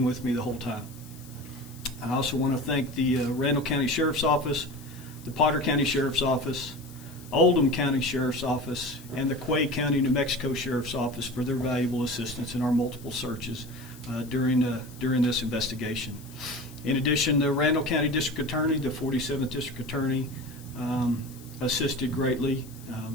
with me the whole time. I also want to thank the Randall County Sheriff's Office, the Potter County Sheriff's Office, Oldham County Sheriff's Office, and the Quay County, New Mexico Sheriff's Office for their valuable assistance in our multiple searches during this investigation. In addition, the Randall County District Attorney, the 47th District Attorney, assisted greatly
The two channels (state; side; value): noise; left; hiss, 21 dB below the sound